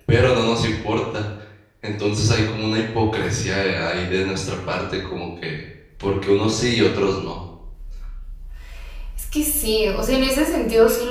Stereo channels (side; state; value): both; identical; correlation 1.00